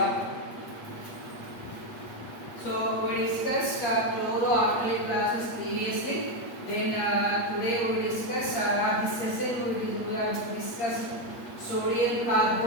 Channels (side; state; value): right; late; 8.6 ms